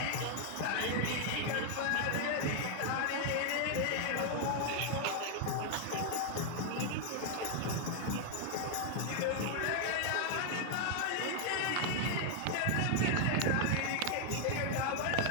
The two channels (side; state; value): both; different; correlation 0.00